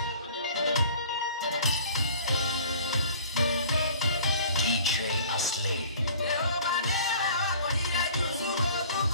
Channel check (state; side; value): inverted; both; correlation -0.48